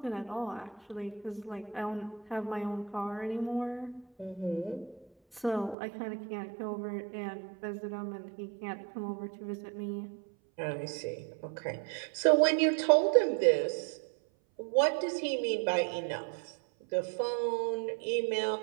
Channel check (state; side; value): drops out; left; at 5.8 s